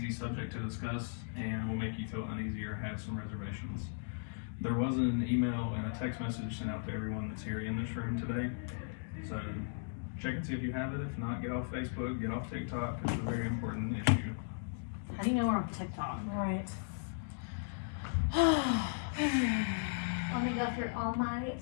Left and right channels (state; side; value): silent; right; digital silence